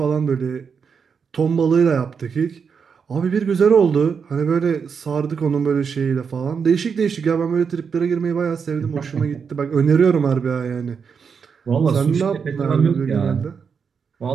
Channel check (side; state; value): left; quieter; 6.2 dB